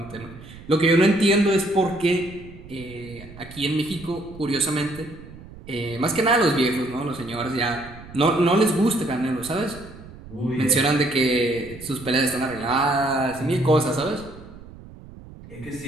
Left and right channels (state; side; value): noise; right; rumble, 17 dB below the sound